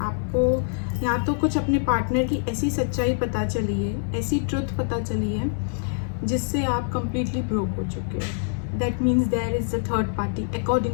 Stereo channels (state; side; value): silent; right; digital silence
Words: या तो कुछ अपने पार्टनर की ऐसी सच्चाई पता चली है, ऐसी ट्रुथ पता चली है जिससे आप कंप्लीटली ब्रोक हो चुके हो। That means there is a third party